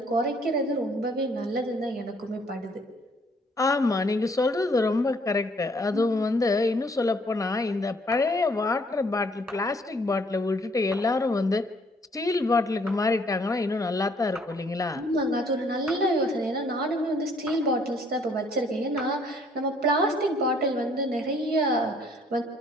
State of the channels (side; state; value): both; normal; correlation 0.63